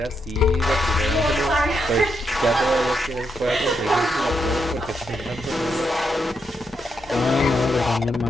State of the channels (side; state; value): both; normal; correlation 0.81